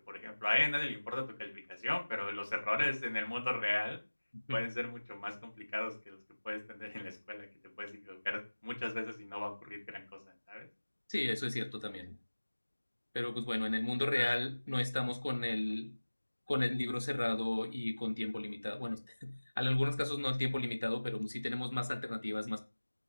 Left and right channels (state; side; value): inverted; both; correlation -1.00